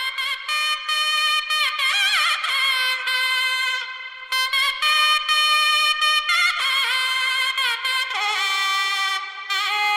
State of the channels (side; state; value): both; identical; correlation 1.00